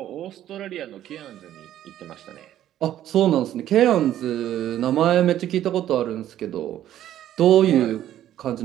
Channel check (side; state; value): left; quieter; 12.1 dB